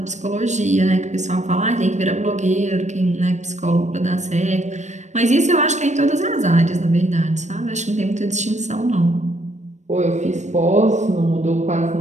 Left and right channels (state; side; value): late; left; 0.34 ms